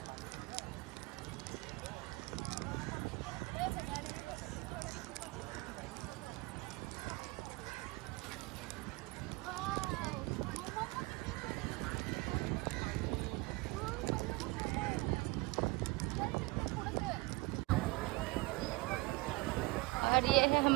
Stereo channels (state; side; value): quieter; left; 23.5 dB